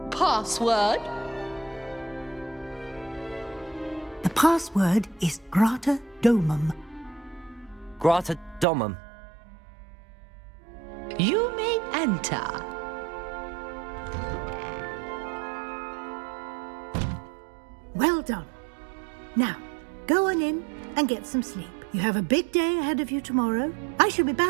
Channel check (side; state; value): left; drops out; at 8.7 s